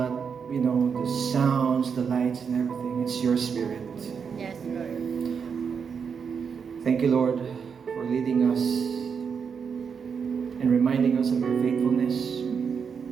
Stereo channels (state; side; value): quieter; left; 6.4 dB